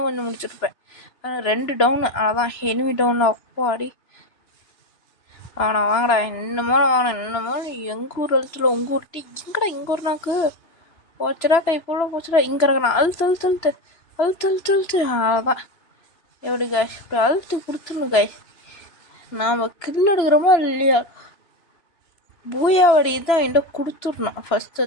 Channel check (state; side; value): late; right; 3.0 ms